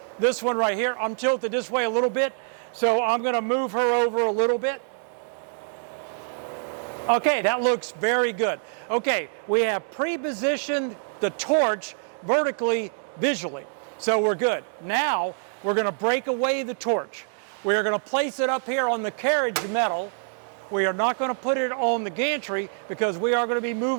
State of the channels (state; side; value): silent; left; digital silence